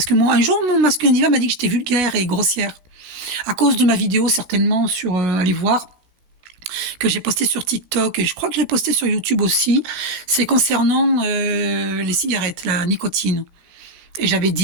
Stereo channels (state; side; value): late; left; 17 ms